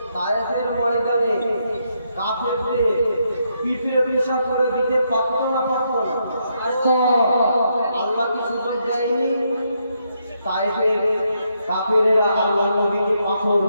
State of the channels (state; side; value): inverted; both; correlation -0.78